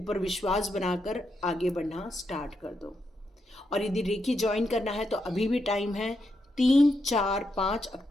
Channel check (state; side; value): normal; both; correlation 0.82